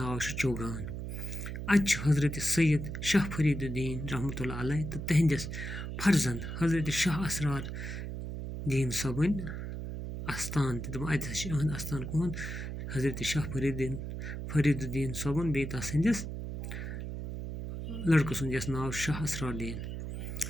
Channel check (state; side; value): noise; right; hum, 6 dB below the sound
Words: چھُ چوگان اَتہِ چھُ حضرت سید شاہ فریٖد الدیٖن رحمتہ اللہ علیہ تہٕ تِہنٛدِس فرزند حضرت شاہ اسرار دیٖن صٲبٕنۍ اَستان تہِ دَپان اَتہِ ہسا چھُ یِہُنٛد اَستان کُہُنٛد حضرت شاہ فریٖد الدیٖن صٲبُن بیٚیہِ تَس سٕنٛدِس لٔڑکہٕ سُنٛد یَس ناو شاہ اسرار دیٖن